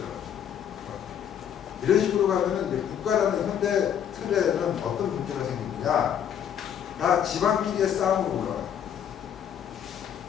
이런 식으로 가면은 이제 국가라는 현대 틀에는 어떤 문제가 생기느냐? 다 집안끼리의 싸움으로 올라가요.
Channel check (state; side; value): quieter; right; 9.0 dB